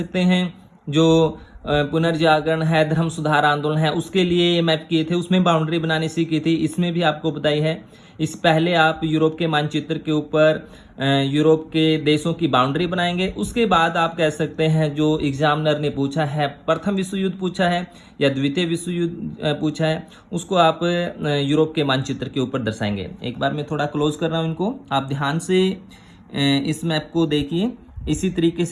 हैं जो पुनर्जागरण है, धर्म सुधार आंदोलन है, उसके लिए ये मैप किए थे, उसमें बाउंड्री बनानी सीखी थी, इसमें भी आपको बताई है। इस पहले आप यूरोप के मानचित्र के ऊपर यूरोप के देशों की बाउंड्री बनाएंगे, उसके बाद आप कह सकते हैं जो एग्जामिनर ने पूछा है, प्रथम विश्व युद्ध पूछा है या द्वितीय विश्व युद्ध पूछा है, उसको आप यूरोप के मानचित्र के ऊपर दर्शाएंगे। एक बार मैं थोड़ा क्लोज कर रहा हूँ इनको, आप ध्यान से इस मैप को देखिए। इसी तरीके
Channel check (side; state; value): both; identical; correlation 1.00